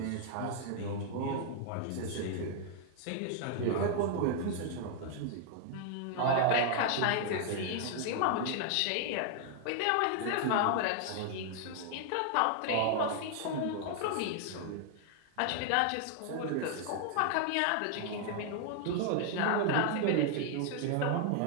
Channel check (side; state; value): both; different; correlation 0.00